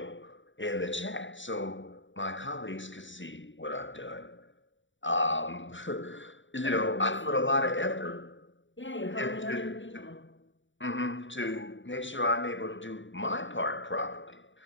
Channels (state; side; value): late; right; 0.55 ms